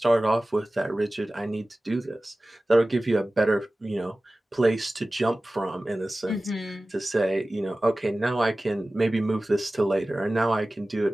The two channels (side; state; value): both; normal; correlation 0.97